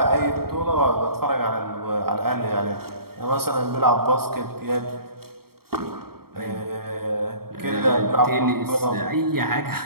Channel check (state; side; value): late; left; 0.94 ms